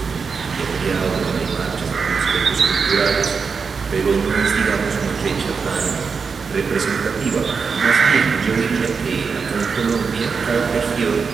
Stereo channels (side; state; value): left; quieter; 5.4 dB